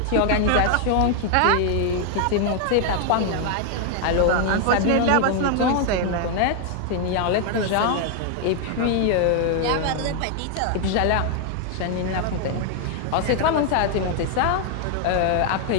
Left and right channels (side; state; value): both; different; correlation 0.00